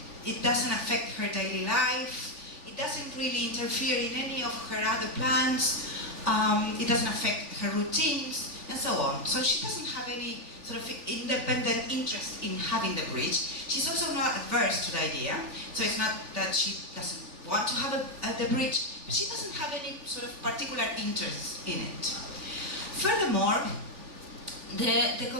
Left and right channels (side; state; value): left; late; 3.4 ms